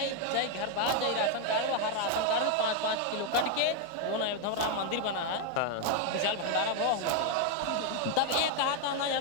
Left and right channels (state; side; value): different; both; correlation 0.01